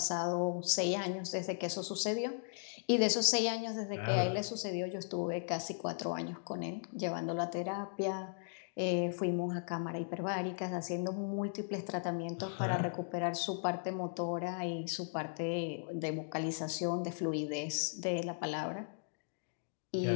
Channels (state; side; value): silent; right; digital silence